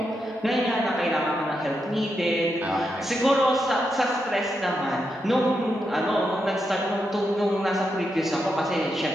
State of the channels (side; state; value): both; normal; correlation 0.84